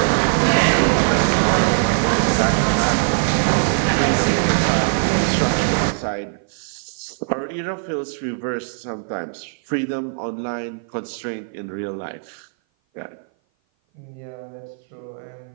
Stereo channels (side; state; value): left; silent; 57 dB below the other